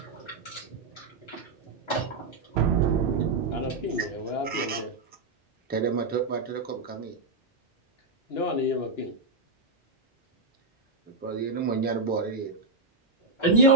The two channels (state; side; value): quieter; left; 3.4 dB